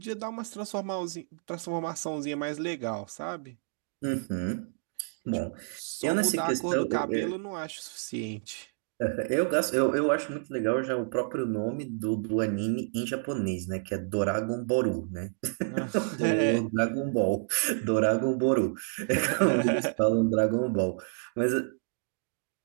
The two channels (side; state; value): left; silent; digital silence